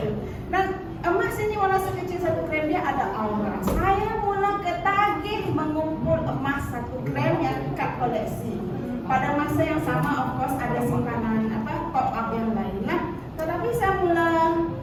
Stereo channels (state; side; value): identical; both; correlation 1.00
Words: itu. Dan emas ini walau sekecil 1 gram, dia ada aura. Saya mula ketagih mengumpul emas 1 gram yang dekat koleksi. Pada masa yang sama, of course, ada simpanan pop up yang lain lah. Tetapi saya mula